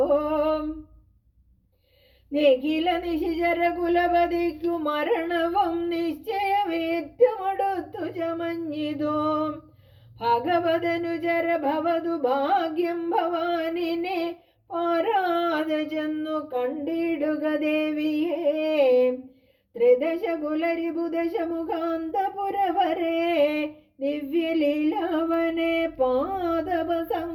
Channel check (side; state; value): both; identical; correlation 1.00